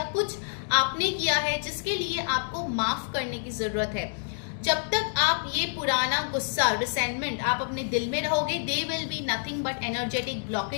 कुछ आपने किया है जिसके लिए आपको माफ करने की जरूरत है. जब तक आप ये पुराना गुस्सा, रिसेंटमेंट आप अपने दिल में रहोगे, they will be nothing but energetic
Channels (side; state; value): right; silent; digital silence